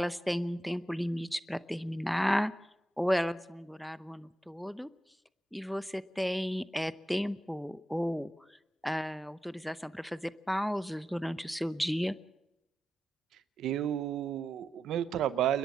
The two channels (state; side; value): normal; both; correlation 0.88